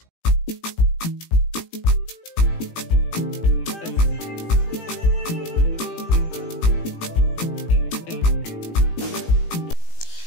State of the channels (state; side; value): late; right; 18 ms